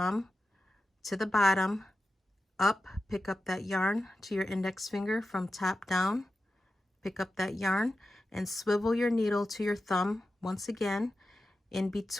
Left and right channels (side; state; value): both; normal; correlation 0.92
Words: to the bottom, up, pick up that yarn to your index finger from top down, pick up that yarn and swivel your needle to your thumb once again in